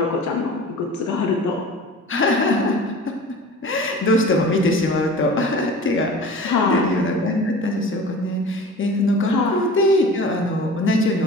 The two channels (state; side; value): normal; both; correlation 0.39